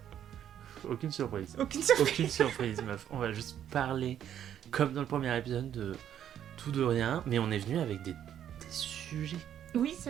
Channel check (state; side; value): quieter; left; 10.1 dB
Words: Aucune surprise. Aucune surprise. Aucune surprise, meuf. On va juste parler, comme dans le premier épisode, de tout de rien, mais on est venu avec des sujets. Oui, c'est